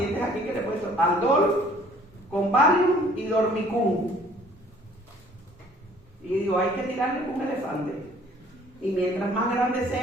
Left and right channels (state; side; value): normal; both; correlation 0.56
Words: aquí que le he puesto Aldol con Valium y Dormicum. Y digo, hay que tirarle con un elefante. Y mientras más grandes